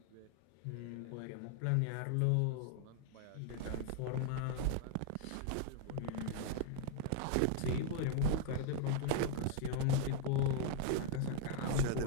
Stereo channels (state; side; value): different; both; correlation 0.00